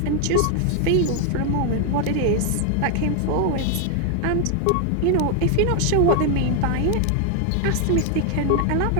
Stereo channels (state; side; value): different; both; correlation 0.00